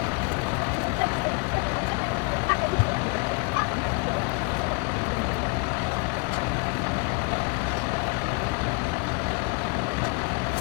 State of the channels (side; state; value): right; quieter; 32.3 dB